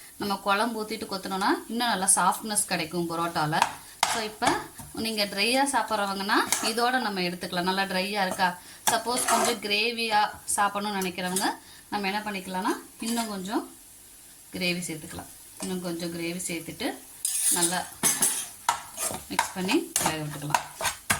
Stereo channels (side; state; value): both; identical; correlation 1.00